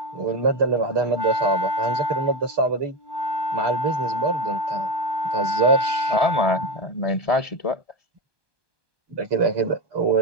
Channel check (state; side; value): late; left; 1.2 ms